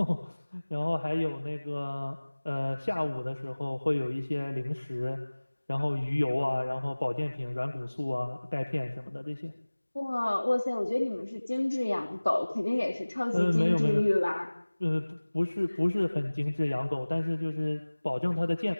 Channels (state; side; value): inverted; both; correlation -1.00